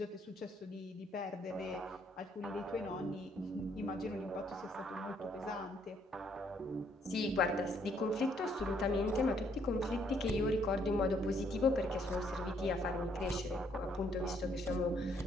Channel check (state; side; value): normal; both; correlation 0.69